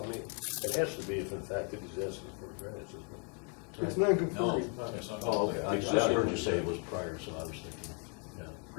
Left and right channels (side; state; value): right; quieter; 36.9 dB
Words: I mean, it has to be if in fact that he's asking for a variance, isn't it? It's No, non-conforming. it's not. Oh, okay, I heard you say it was prior, so I was thinking. Yeah.